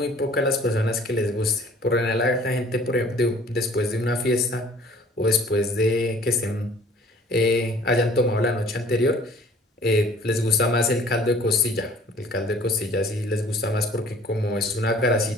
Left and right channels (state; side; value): normal; both; correlation 0.52